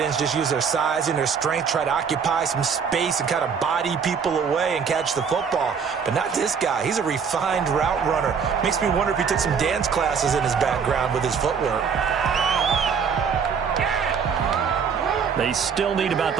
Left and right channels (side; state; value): left; quieter; 6.4 dB